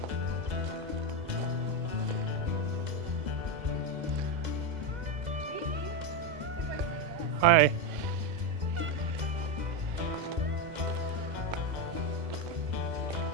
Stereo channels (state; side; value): late; left; 2.0 ms